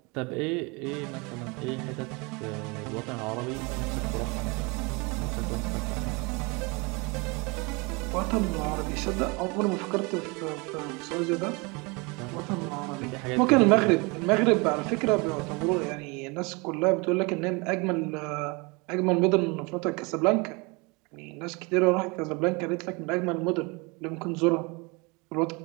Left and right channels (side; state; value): left; quieter; 28.3 dB